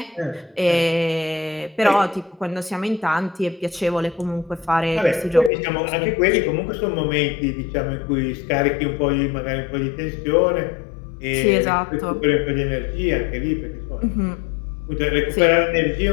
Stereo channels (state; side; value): drops out; right; at 5.5 s